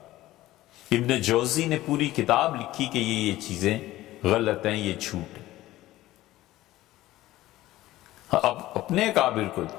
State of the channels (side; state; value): right; quieter; 16.0 dB